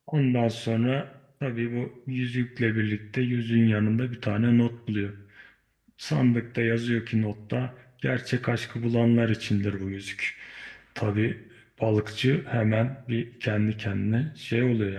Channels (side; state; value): both; identical; correlation 1.00